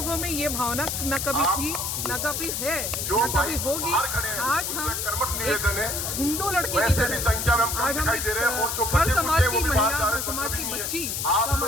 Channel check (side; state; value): left; noise; hiss, 2 dB below the sound